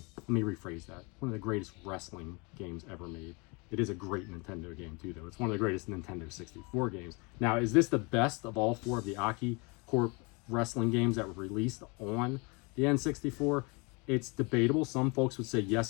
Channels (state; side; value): quieter; right; 29.6 dB